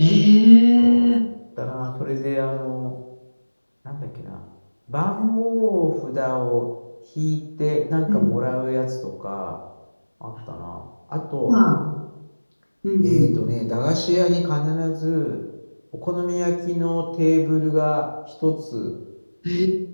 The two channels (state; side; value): inverted; both; correlation -1.00